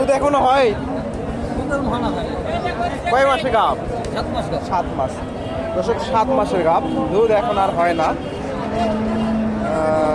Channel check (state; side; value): identical; both; correlation 1.00